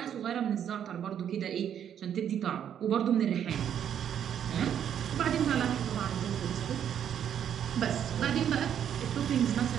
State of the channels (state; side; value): quieter; left; 9.3 dB